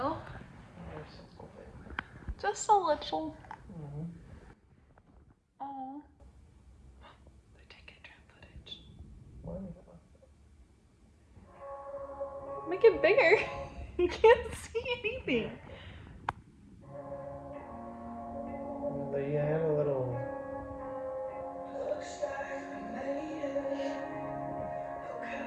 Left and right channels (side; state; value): both; identical; correlation 1.00